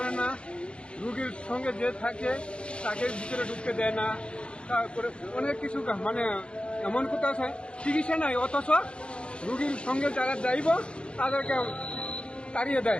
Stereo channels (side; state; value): right; late; 0.057 ms